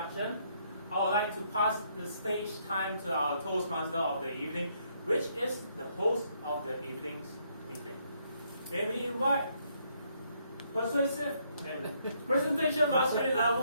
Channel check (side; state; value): both; inverted; correlation -0.71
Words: I would like to pass the stage time to our Toastmaster of the evening, which is the host of the evening's meeting. May we invite Persuasive and Presentation Mastery